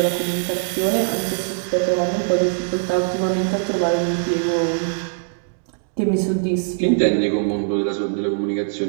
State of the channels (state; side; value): silent; left; digital silence